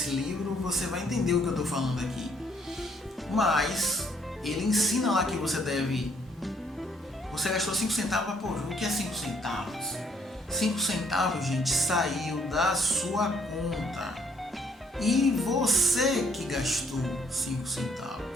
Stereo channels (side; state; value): both; normal; correlation 0.67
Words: livro, você vai entender o que eu estou falando aqui. Mas ele ensina lá que você deve... Você gastou 5 centavos, pô, o que é 5 centavos? 5 centavos, gente, saiu da sua conta. E você que gastou 5